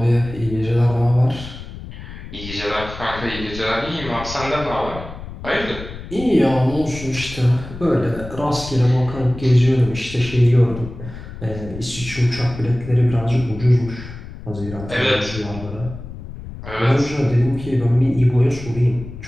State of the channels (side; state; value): left; noise; rumble, 12 dB below the sound